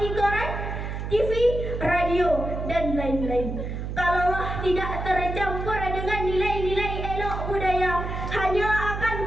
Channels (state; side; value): noise; right; hum, 5 dB below the sound